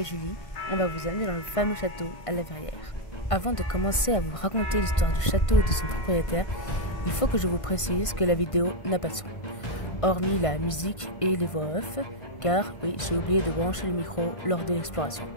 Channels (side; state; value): right; late; 1.5 ms